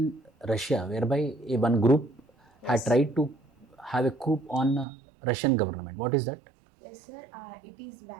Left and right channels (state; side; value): drops out; left; at 4.9 s